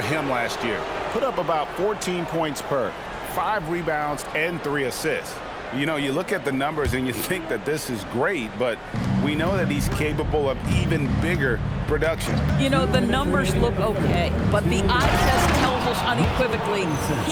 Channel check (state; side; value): identical; both; correlation 1.00